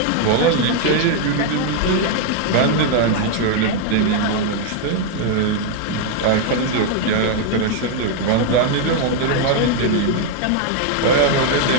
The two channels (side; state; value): both; different; correlation 0.00